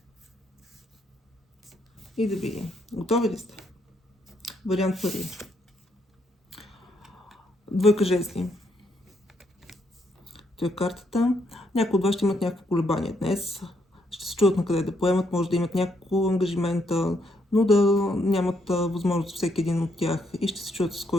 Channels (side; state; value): both; normal; correlation 0.74